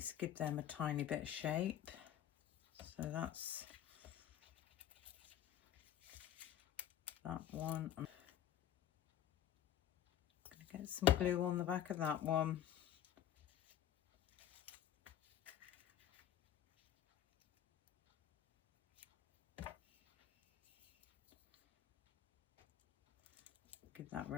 give them a tiny bit of shape. So that's that one. I'm going to get some glue on the back of that one. Give that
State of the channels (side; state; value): right; quieter; 10.9 dB